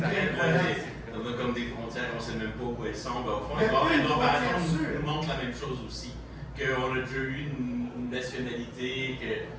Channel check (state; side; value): identical; both; correlation 1.00